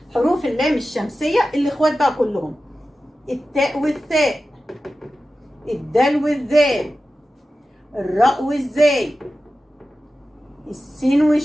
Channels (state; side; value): normal; both; correlation 0.94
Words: حروف اللام الشمسيه الاخوات بقى كلهم: التاء والثاء، الدال والذال، الراء والزاي، السين